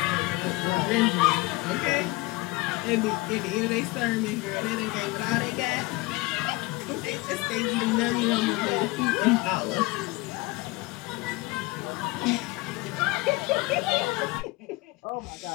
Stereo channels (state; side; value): quieter; right; 22.4 dB